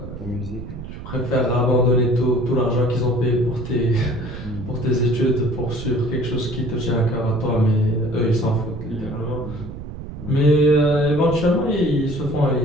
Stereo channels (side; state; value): right; noise; rumble, 10 dB below the sound